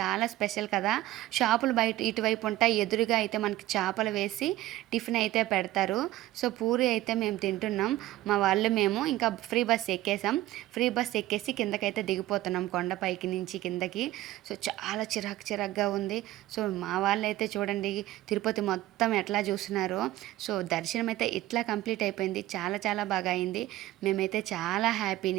స్పెషల్ కదా. షాపులు బయట ఇటువైపు ఉంటాయి, ఎదురుగా అయితే మనకి చేపలు వేసి టిఫిన్ అయితే పెడతారు. సో పూరి అయితే మేము తింటున్నాం. మా వాళ్ళు మేము ఇంకా ఫ్రీ బస్ ఎక్కేసాం. ఫ్రీ బస్ ఎక్కేసి కిందకైతే దిగిపోతున్నాం, కొండపైకి నుంచి కిందకి. సో చాలా చిరాగ్గా ఉంది. సో మా వాళ్ళు అయితే చూడండి తిరుపతి మొత్తం ఎట్లా చూస్తున్నారో. సో దర్శనం అయితే ఇట్లా కంప్లీట్ అయిపోయింది. చాలా బాగా అయింది. మేమైతే చాలా హ్యాపీ,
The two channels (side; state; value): left; quieter; 15.7 dB